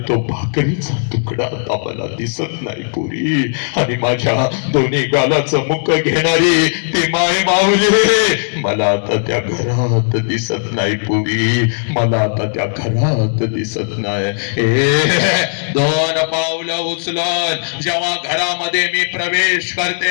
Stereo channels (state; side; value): silent; right; digital silence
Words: तो भाकरीचा तुकडा आता मला दिसत नाही पुरी. आणि माझ्या दोन्ही गालाचं मुख घेणारी ती माय माऊली मला आता त्या घरात दिसत नाही पुरी, मला आता त्या घरात दिसत नाही. 2 पावलं उचलून जेव्हा घरामध्ये मी प्रवेश करते